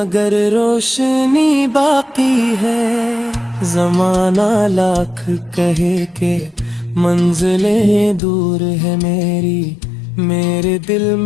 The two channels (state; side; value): drops out; right; at 8.2 s